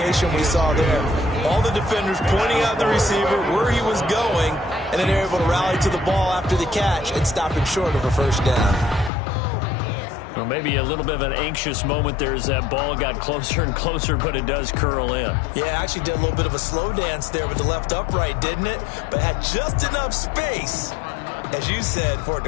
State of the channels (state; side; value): drops out; right; at 9.1 s